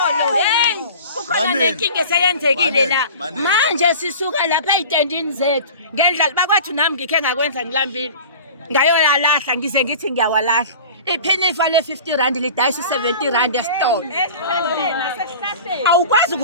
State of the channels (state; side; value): inverted; both; correlation -0.39